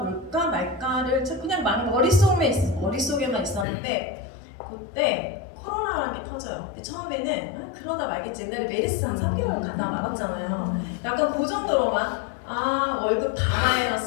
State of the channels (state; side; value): drops out; right; at 3.7 s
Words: 말까를 그냥 막 머릿속에만 있었는데 그때 코로나라는 게 터져요. 근데 처음에는 그러다 말겠지. 옛날에 메르스 한 3개월 가다 말았잖아요. 약간 그 정도로만 월급 다